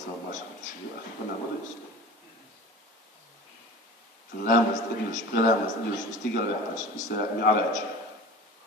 ماشي شو اخي كنا ما يصير لامس ادلش بلامس ادلش استيقظ يحتاج يستمع علاج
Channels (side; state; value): both; normal; correlation 0.38